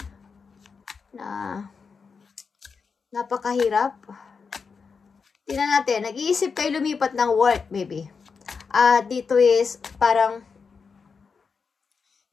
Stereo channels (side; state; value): right; quieter; 5.4 dB